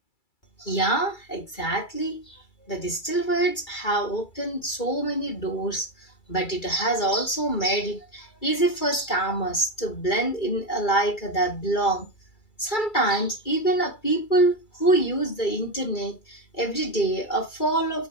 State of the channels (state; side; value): late; right; 2.3 ms